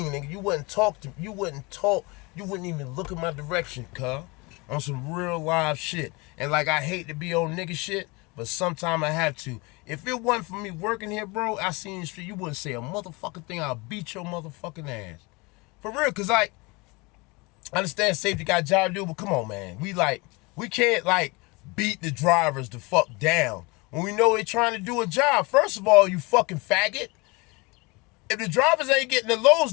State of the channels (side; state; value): right; quieter; 26.3 dB